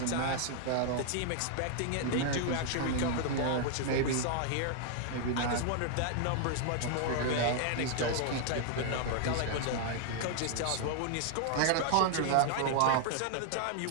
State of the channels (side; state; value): both; different; correlation 0.00